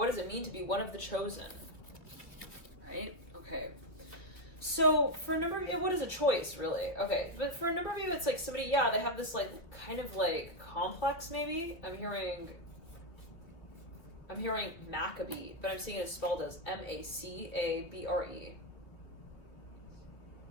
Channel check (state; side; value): late; right; 2.9 ms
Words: does it mean to be one of the chosen? Right? Okay. So for a number of you, what is a choice, really? Okay, but for a number of you, it's like somebody, they have this like kind of like complex, maybe. I'm hearing Maccabee, but I'm seeing it spelled as Macabre.